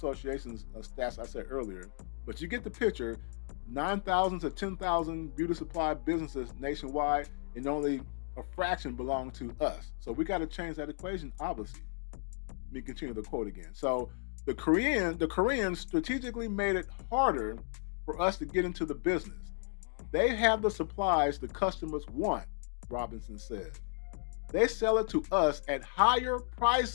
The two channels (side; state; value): right; silent; digital silence